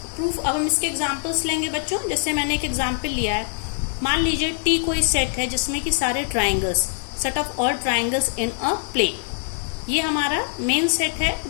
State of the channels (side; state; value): right; silent; digital silence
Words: प्रूफ, अब हम इसके एग्जांपल्स लेंगे बच्चों। जैसे मैंने एक एग्जांपल लिया है, मान लीजिए टी कोई सेट है जिसमें कि सारे triangles, set of all triangles in a plane, ये हमारा मेन सेट